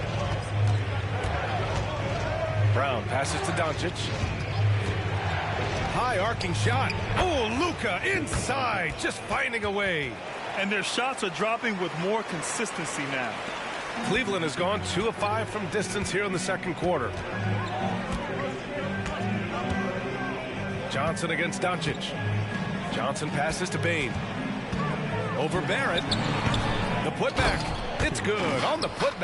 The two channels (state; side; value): identical; both; correlation 1.00